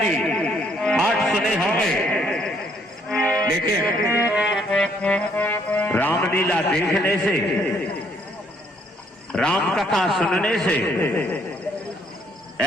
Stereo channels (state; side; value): normal; both; correlation 0.68